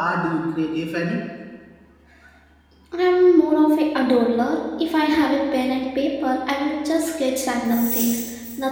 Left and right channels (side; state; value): both; identical; correlation 1.00